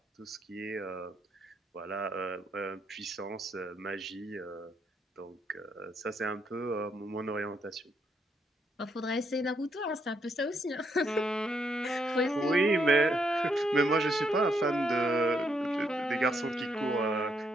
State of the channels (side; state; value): both; normal; correlation 0.75